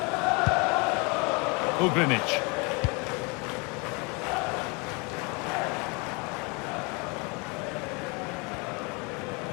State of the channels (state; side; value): quieter; right; 30.1 dB